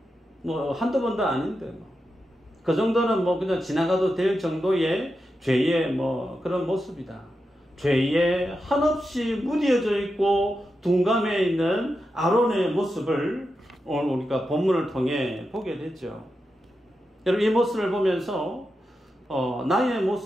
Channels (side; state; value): both; normal; correlation 0.89